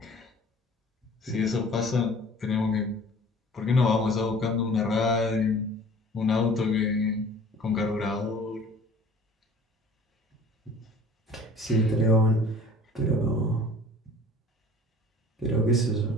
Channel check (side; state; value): both; normal; correlation 0.47